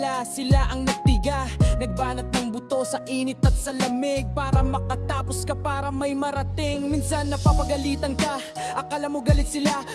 sila ang nagtiga. Nagbanat ng buto sa init at sa lamig para makatapos ka, para may marating. Minsan napapagalitan ka, akala mo galit sila,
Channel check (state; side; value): identical; both; correlation 1.00